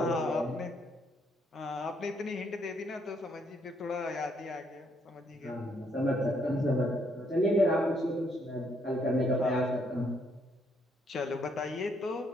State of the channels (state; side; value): normal; both; correlation 0.72